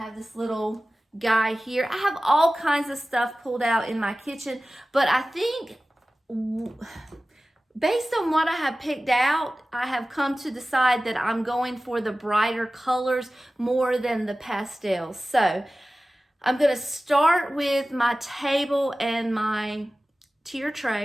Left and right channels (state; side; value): normal; both; correlation 0.96